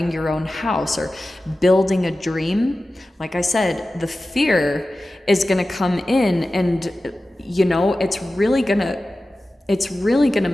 your own house or building a dream. Like I said, the fear is going to come in, and it's really going to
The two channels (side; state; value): both; normal; correlation 0.95